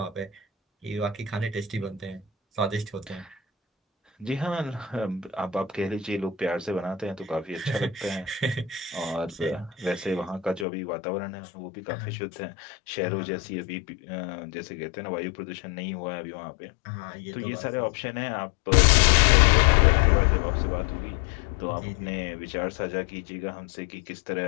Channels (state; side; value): drops out; right; at 10.7 s